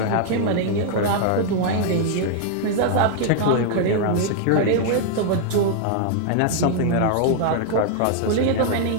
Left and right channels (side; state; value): both; different; correlation 0.00